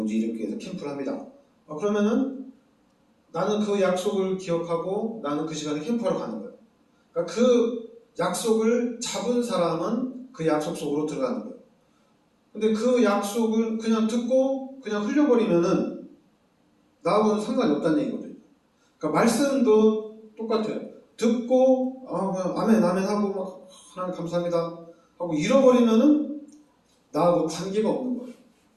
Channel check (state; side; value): identical; both; correlation 1.00